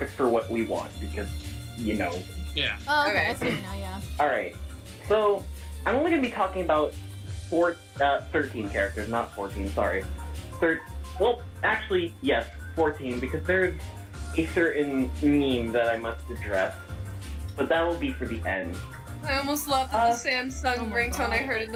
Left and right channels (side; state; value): both; identical; correlation 1.00